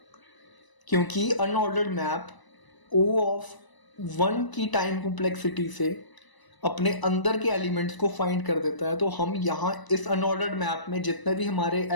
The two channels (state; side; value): late; right; 1.0 ms